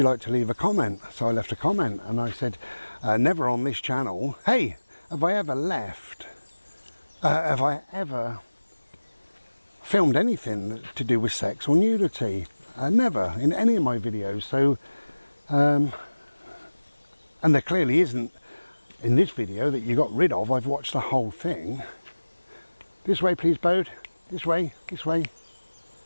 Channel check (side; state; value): both; inverted; correlation -1.00